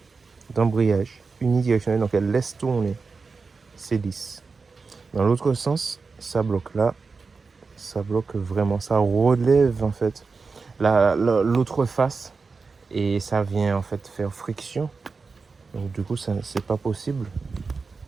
d'embrayage unidirectionnel, donc elles laissent tourner, c'est lisse. Dans l'autre sens, ça bloque là, ça bloque vraiment, ça relève en fait l'autre face et ça vient en fait faire friction. Donc du coup, c'est pas possible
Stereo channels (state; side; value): quieter; left; 4.5 dB